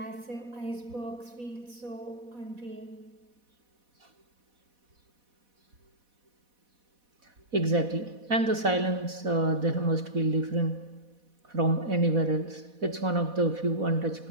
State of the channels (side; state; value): left; late; 4.1 ms